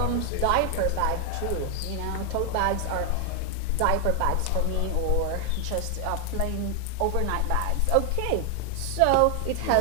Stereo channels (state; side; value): different; both; correlation 0.00